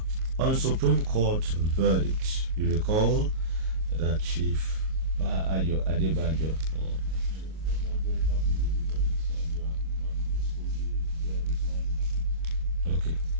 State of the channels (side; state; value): left; late; 38 ms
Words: on Supreme Court verdict. You recall that Chief Ayo Adebanjo. Okay.